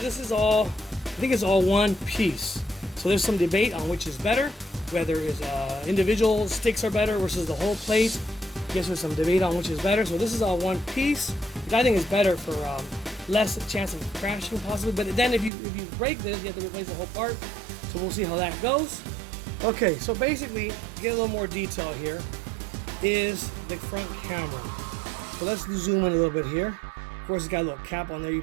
is all, I think it's all one piece. So there's some debate on which is better, whether it's individual sticks are better versus the whole plate. I guess there's some debate on which is better. So this is all one piece, which I think is better for less chance of crashing possibly. But then if you break this, you have to replace the whole part. So we'll see how that goes. Okay, so basically, to get a little more detail here, is the front camera. So let's zoom in a little bit here. Of course, it's got a little cap on there. You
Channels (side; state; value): left; drops out; at 15.5 s